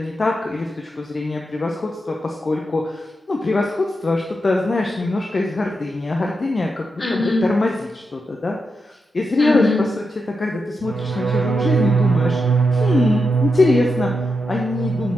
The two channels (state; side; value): normal; both; correlation 0.86